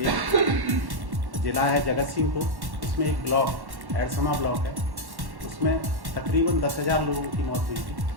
जिला है जगत सिंहपुर, उसमें एक ब्लॉक एडसमा ब्लॉक है, उसमें तकरीबन 10,000 लोगों की मौत हुई थी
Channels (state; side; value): late; left; 1.1 ms